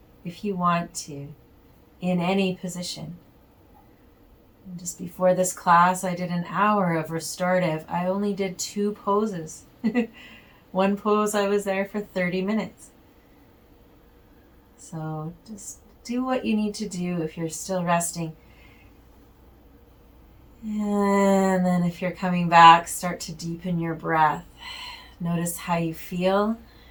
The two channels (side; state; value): both; identical; correlation 1.00